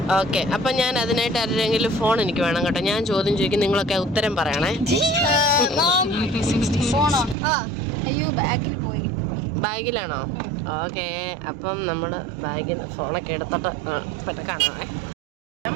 ഓക്കെ. അപ്പൊ ഞാൻ അതിനായിട്ട് ആരെങ്കിലും ഫോൺ എനിക്ക് വേണം കേട്ടോ. ഞാൻ ചോദ്യം ചോദിക്കും, നിങ്ങളൊക്കെ ഉത്തരം പറയണേ. ബാഗിലാണോ? ഓക്കെ. അപ്പം നമ്മള് ബാഗിൽ ഫോണൊക്കെ എടുത്തിട്ട് പെട്ടെന്ന് കാണാമേ.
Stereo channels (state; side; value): drops out; left; at 7.4 s